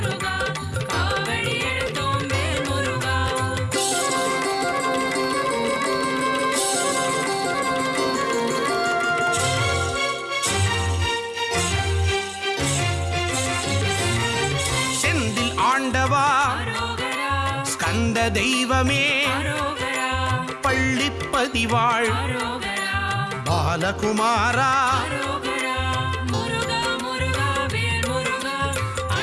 வந்த தெய்வமே அரோகரா பள்ளிப்பதிவாள் அரோகரா பாலகுமாரா அரோகரா முருகா முருகா வேல் முருகா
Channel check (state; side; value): identical; both; correlation 1.00